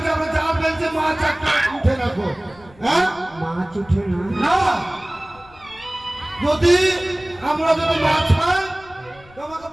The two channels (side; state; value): left; noise; rumble, 25 dB below the sound